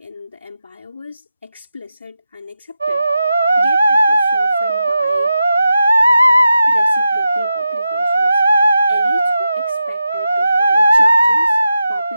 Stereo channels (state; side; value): inverted; both; correlation -0.91